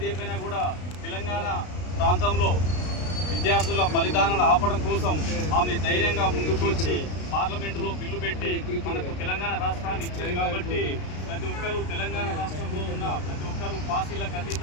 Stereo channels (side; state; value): right; late; 33 ms